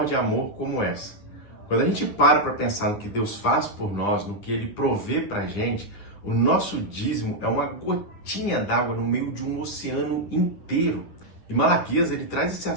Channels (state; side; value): late; right; 9.9 ms